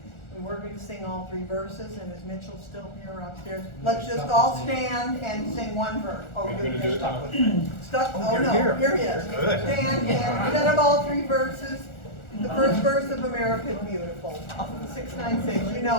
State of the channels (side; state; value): right; late; 1.4 ms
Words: We're going to sing all 3 verses, and is Mitchell still here upstairs? Let's just all stand and sing one verse. Oh, you're stuck with me. Stuck? Oh, no, here he is. Stand and instead of all 3 verses, the first verse of America is Beautiful. 696, you